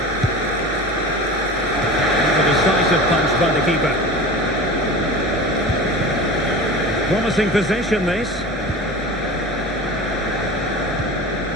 That's a decisive punch by the keeper. Promising possession, this.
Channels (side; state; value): both; normal; correlation 0.34